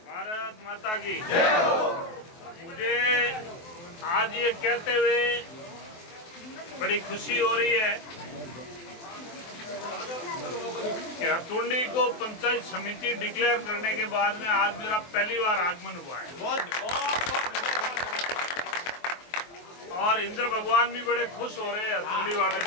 भारत माता की जय हो। मुझे आज ये कहते हुए बड़ी खुशी हो रही है कि हथुंडी को पंचायत समिति डिक्लेयर करने के बाद में आज मेरा पहली बार आगमन हुआ है। और इंद्र भगवान भी बड़े खुश हो रहे हैं हथुंडी वाले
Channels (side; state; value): right; late; 23 ms